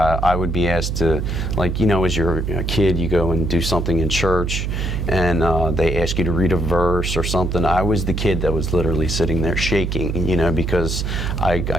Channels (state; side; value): noise; right; hum, 2 dB below the sound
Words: would be asked to, as you're a kid, you go and do something in church, and they ask you to read a verse or something. I was the kid that was literally sitting there shaking, because